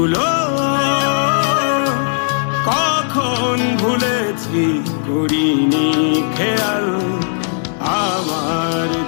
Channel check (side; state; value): right; silent; digital silence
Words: কখন ভুলেছি করিনি খেয়াল, আমার